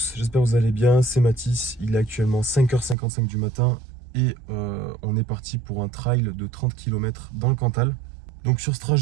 j'espère que vous allez bien, c'est Mathis, il est actuellement 5h55 du matin et on est parti pour un trail de 30 km dans le Cantal. Donc sur ce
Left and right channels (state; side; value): drops out; left; at 3.0 s